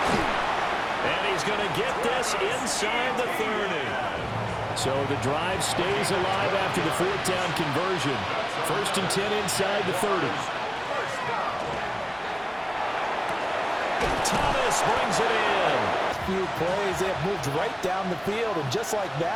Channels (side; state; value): both; identical; correlation 1.00